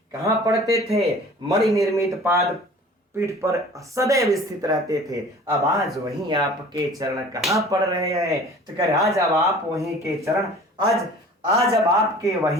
कहां पड़ते थे? मणि निर्मित पाद पीठ पर सदैव स्थित रहते थे। अब आज वहीं आपके चरण कहां पड़ रहे हैं? तो कह आज अब आप वहीं के चरण, आज अब आपके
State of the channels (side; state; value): both; normal; correlation 0.46